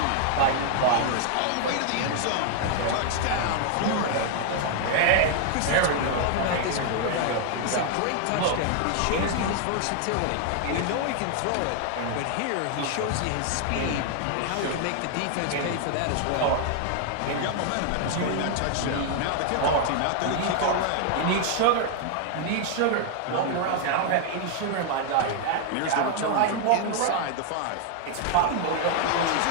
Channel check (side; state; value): both; different; correlation 0.00